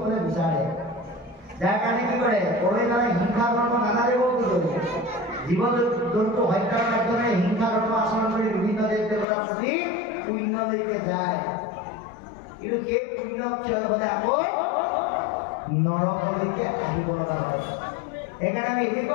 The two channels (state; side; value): drops out; right; at 9.2 s